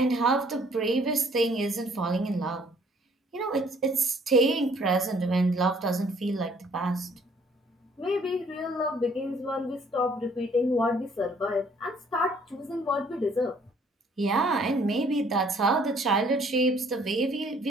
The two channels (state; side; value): normal; both; correlation 0.61